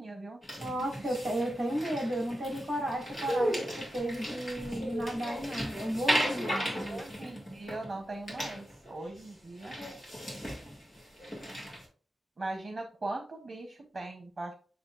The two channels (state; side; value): normal; both; correlation 0.89